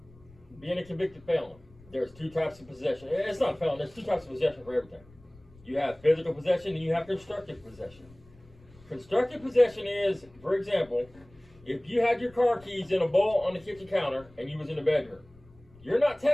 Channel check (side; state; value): left; noise; rumble, 25 dB below the sound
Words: Being a convicted felon, there's two types of possession. It's not a felon. There's two types of possession for everything. You have physical possession and you have constructive possession. Constructive possession is, for example, if you had your car keys in a bowl on the kitchen counter and you was in the bedroom, you're not